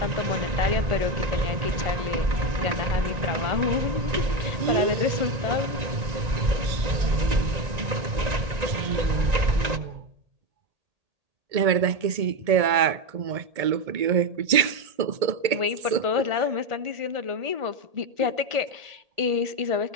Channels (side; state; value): left; late; 1.8 ms